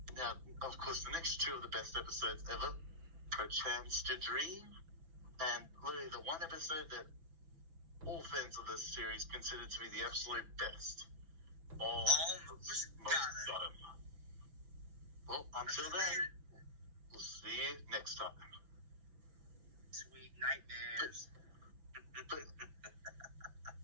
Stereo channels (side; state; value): left; late; 6.0 ms